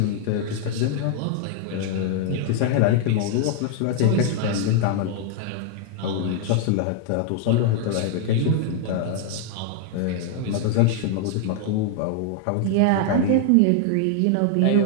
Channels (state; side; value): different; both; correlation 0.00